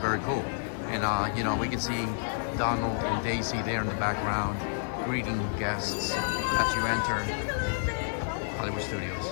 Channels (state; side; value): silent; right; digital silence